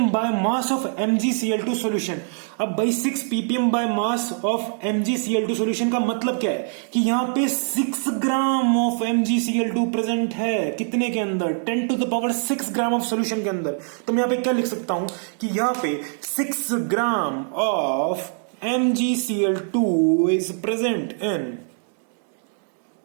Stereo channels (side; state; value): left; silent; 56 dB below the other